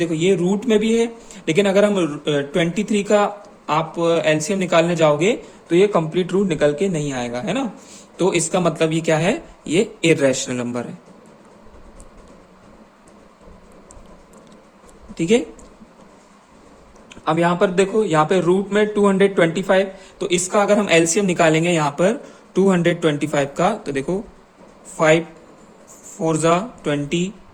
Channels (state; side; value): identical; both; correlation 1.00